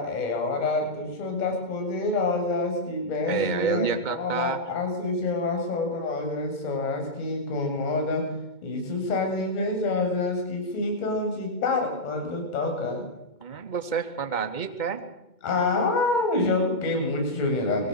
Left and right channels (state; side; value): late; right; 2.2 ms